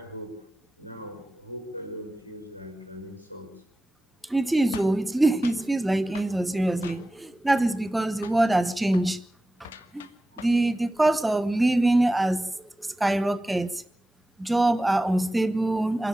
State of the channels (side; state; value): both; normal; correlation 0.95